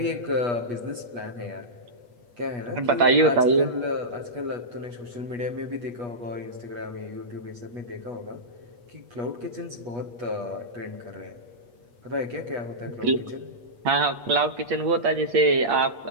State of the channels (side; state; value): left; late; 8.2 ms